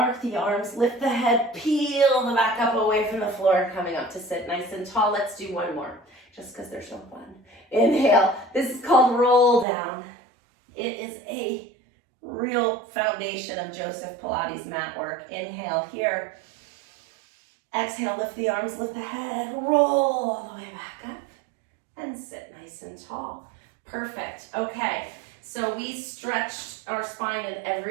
the arms, lift the head, peel the back up away from the floor, coming up to sit nice and tall. Let's do one more, just because they're so fun. Inhale. This is called roll down. It is a real foundation of Joseph Pilates mat work. Inhale here. Exhale, lift the arms, lift the head, roll all the way back up, and sit nice and tall. Perfect. Okay, so we stretched our spine in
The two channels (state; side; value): drops out; left; at 9.7 s